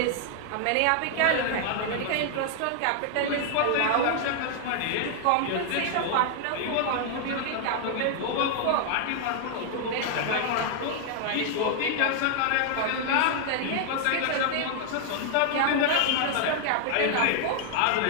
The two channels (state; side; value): different; both; correlation 0.00